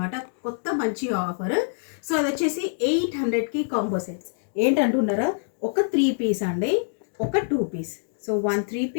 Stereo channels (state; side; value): silent; right; digital silence